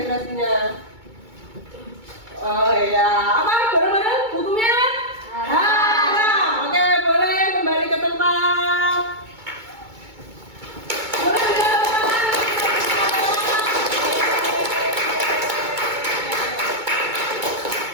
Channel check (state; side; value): late; left; 2.2 ms